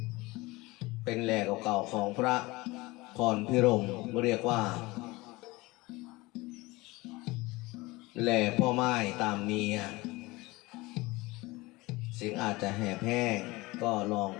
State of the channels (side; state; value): right; quieter; 22.0 dB